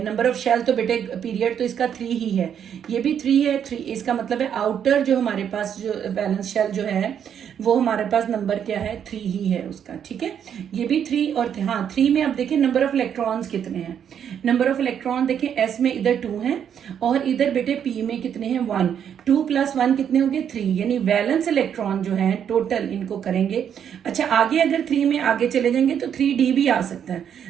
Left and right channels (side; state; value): left; quieter; 8.6 dB